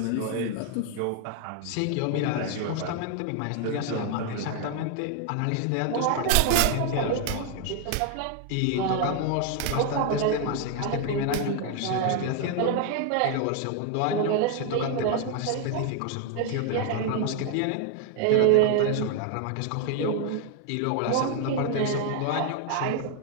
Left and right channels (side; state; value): both; different; correlation 0.00